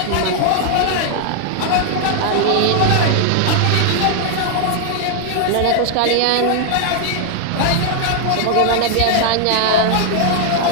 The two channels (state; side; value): different; both; correlation 0.00